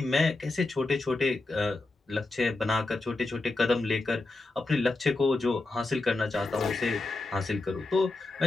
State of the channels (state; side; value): quieter; right; 3.2 dB